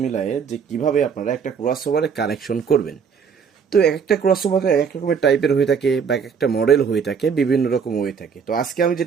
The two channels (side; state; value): left; quieter; 6.4 dB